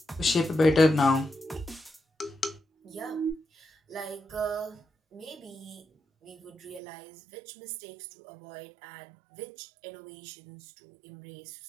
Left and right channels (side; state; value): left; drops out; at 6.8 s